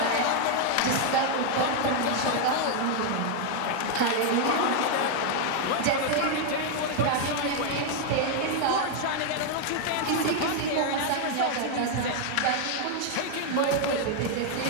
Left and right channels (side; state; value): both; different; correlation 0.00